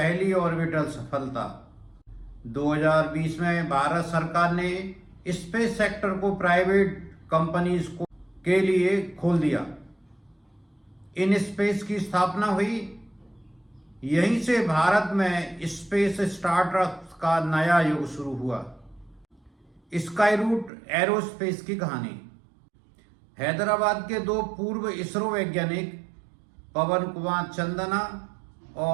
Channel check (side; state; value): left; drops out; at 20.7 s